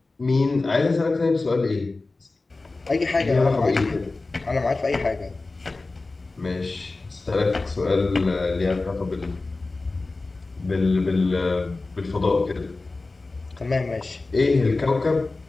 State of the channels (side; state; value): right; quieter; 3.4 dB